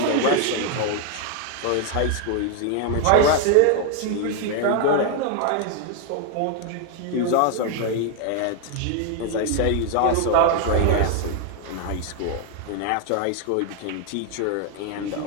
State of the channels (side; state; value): both; different; correlation 0.00